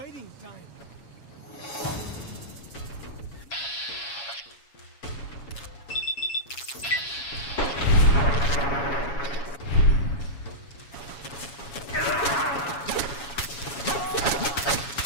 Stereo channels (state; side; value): late; right; 7.2 ms